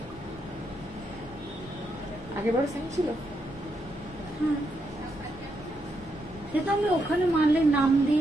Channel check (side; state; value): both; normal; correlation 0.81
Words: আগেবার সেম ছিল। হ্যাঁ, সেটা আমি ওখানে মানলে নাম